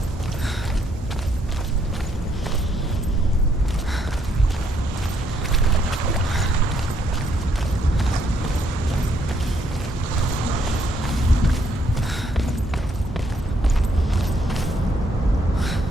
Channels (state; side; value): normal; both; correlation 0.72